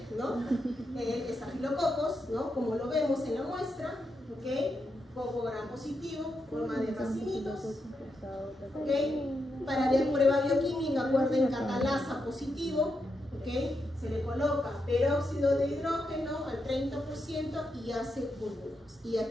¿no? El Staphylococcus, ¿no? Como lo vemos en la muestra, ¿okay? Coco gram positivo, forma de racimitos, ¿okay? Para la prueba bioquímica, acuerden, catalasa positivo, ¿okay? Se le coloca peróxido de hidrógeno al 30% y hace burbujas. Y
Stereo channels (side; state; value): both; normal; correlation 0.84